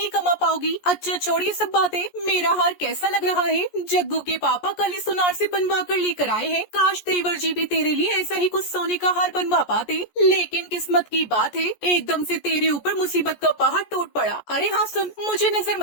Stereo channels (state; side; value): late; right; 14 ms